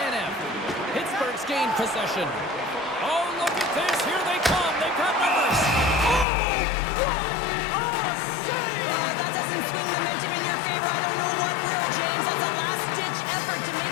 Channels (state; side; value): drops out; right; at 6.2 s